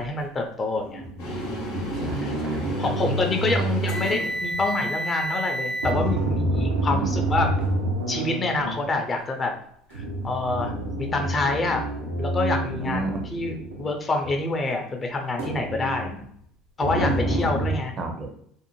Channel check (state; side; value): normal; both; correlation 0.60